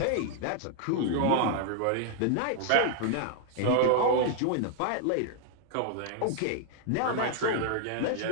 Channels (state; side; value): different; both; correlation 0.00